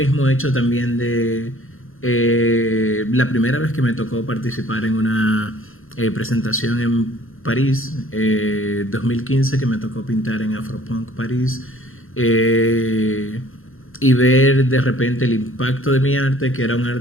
hecho también de la primera vez que me tocó participar en una presentación en París, 2015, que me tocó pintar en Afropunk París, y ver de repente el impacto de mi arte, que era un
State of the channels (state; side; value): late; right; 0.60 ms